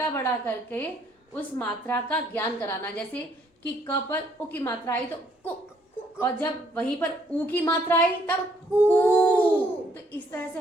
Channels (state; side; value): normal; both; correlation 0.67